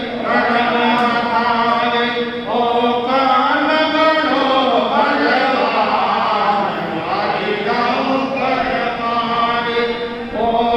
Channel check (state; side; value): identical; both; correlation 1.00